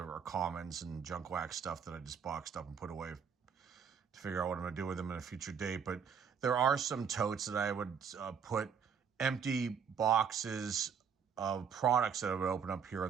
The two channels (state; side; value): quieter; left; 6.9 dB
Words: commons and junk wax stuff that I just boxed up and put away to figure out what I'm going to do with them in a future date. But there are some totes that I would put empty boxes of products that I would open up here